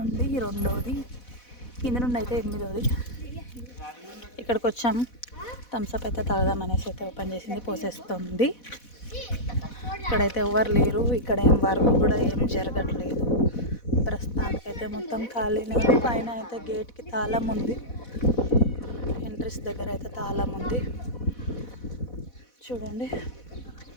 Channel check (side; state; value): right; late; 4.1 ms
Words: రెండోది, కింద నుండి అయితే 8వ. ఇక్కడికి వచ్చాము. థమ్స్అప్ అయితే తాగదాం అనేసి అయితే ఓపెన్ చేసింది, పోసేస్తుంది. ఇక్కడైతే ఎవరు లేరు. ఇక్కడ ఏం వర్క్ కూడా ఏం జరగట్లేదు. ప్రస్తుతానికైతే మొత్తం ఖాళీనే ఉంది. పైన అయితే గేట్కి తాళం ఉంది. ఎంట్రెన్స్ దగ్గర అయితే తాళం ఉంది. చూడండి,